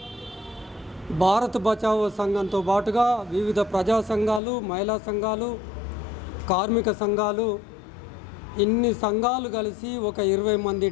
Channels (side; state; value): right; drops out; at 4.4 s